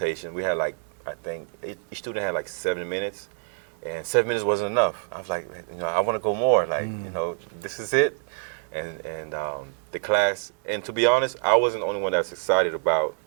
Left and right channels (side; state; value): left; silent; digital silence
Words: we had I think each student had 7 minutes, and 7 minutes wasn't enough. I was like, I want to go more. This is it. And the class, and to be honest, I wasn't the only one that was excited about